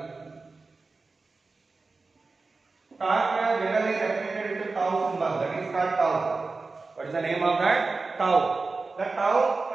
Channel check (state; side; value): quieter; left; 3.9 dB